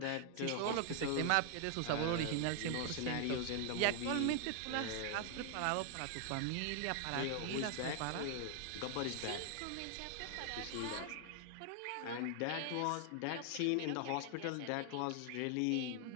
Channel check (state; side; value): different; both; correlation 0.00